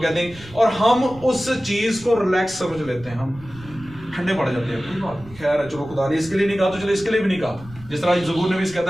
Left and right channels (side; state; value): right; noise; rumble, 20 dB below the sound